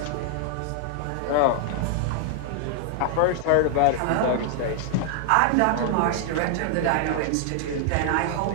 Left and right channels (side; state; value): both; different; correlation 0.00